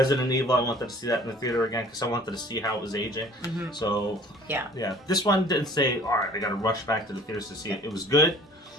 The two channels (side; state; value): both; normal; correlation 0.50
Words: Evil, I wanted to see that in the theater again because I wanted to see how it was aging. So, this one didn't say, all right, I got to rush back to the theaters to see it. It was good.